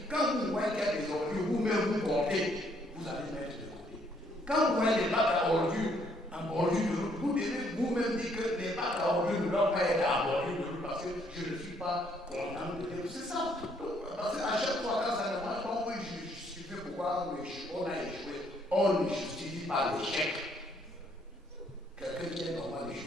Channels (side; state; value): both; normal; correlation 0.68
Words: Quand vous voyez qu'il y a des ordures, vous-même vous portez, vous allez mettre de côté. Quand vous voyez des bacs à ordures en bordure de route, vous devez vous-même dire que les bacs à ordures ne doivent pas être en bordure de route parce que je ne suis pas content de dire. C'est ça. Parce qu'à chaque fois, quand ça ne marche pas, on peut justifier pourquoi on a échoué. On ne justifie pas l'échec. Quelqu'un qui est normal ne